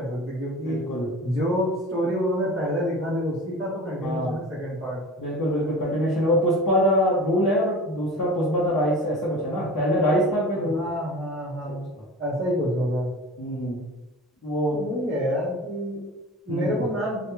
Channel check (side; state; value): both; normal; correlation 0.37